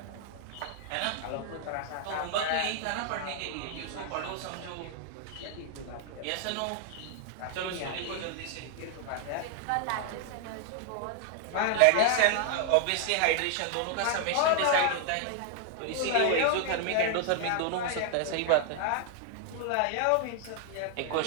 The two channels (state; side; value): different; both; correlation 0.00